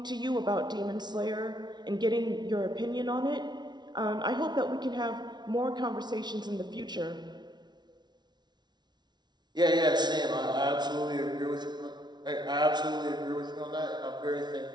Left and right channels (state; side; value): late; left; 0.20 ms